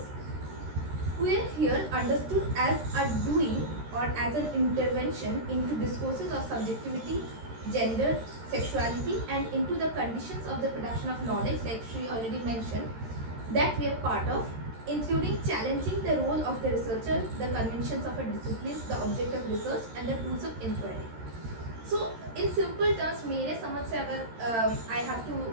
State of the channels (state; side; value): late; left; 13 ms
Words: Queer here understood as a doing or as an intervention into discourses of subjectivity, gender, sexuality, and into the conditions of the production of knowledge, like she already mentioned, that we are part of, including challenging the role of the researcher, the conventions of a discipline, the object of research, and the tools of inquiry. So, in simple terms, मेरे समझ से अगर I have to